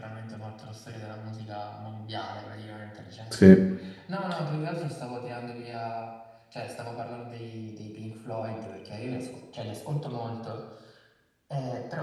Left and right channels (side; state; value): both; identical; correlation 1.00